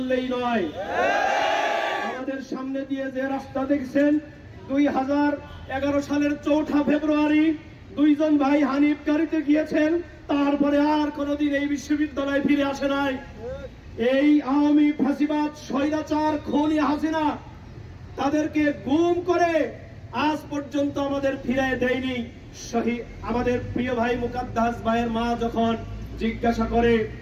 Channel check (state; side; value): identical; both; correlation 1.00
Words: নয়। আমাদের সামনে দিয়ে যে রাস্তা দেখছেন, 2011 সালের 4 ফেব্রুয়ারি দুইজন ভাই হানিফ গাড়িতে গিয়েছেন, তারপরে আর কোনদিন এই বিশ্ববিদ্যালয়ে ফিরে আসে নাই। এই আওয়ামী ফাঁসিবাদ স্বৈরাচার খুনি হাসিনা তাদেরকে গুম করে আজ পর্যন্ত আমাদের ফিরিয়ে দেয়নি। আমাদের প্রিয় ভাই মুকাদ্দাস ভাইয়ের মা যখন জিজ্ঞাসা করে